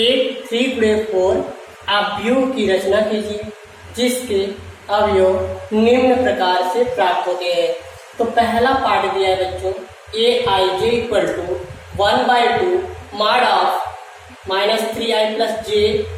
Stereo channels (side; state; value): both; identical; correlation 1.00